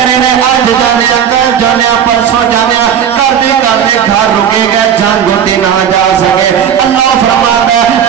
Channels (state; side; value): quieter; left; 8.7 dB